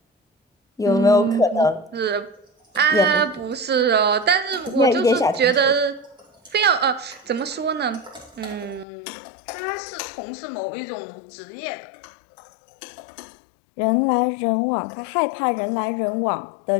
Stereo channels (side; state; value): right; drops out; at 8.8 s